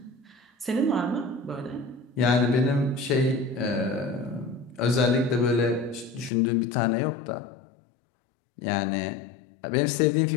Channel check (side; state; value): right; drops out; at 6.3 s